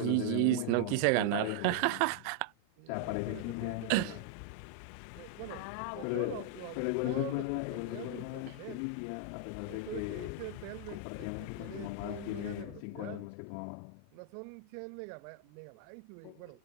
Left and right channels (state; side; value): different; both; correlation 0.00